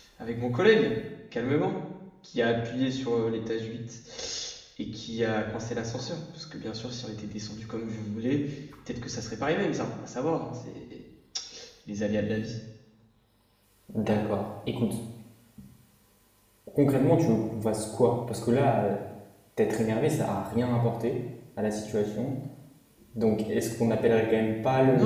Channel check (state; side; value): identical; both; correlation 1.00